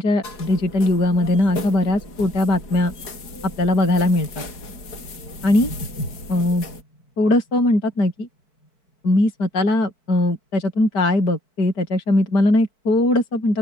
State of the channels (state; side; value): late; right; 4.6 ms